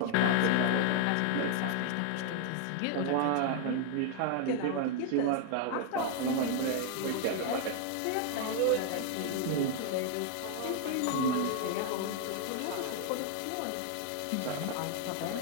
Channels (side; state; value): both; different; correlation 0.00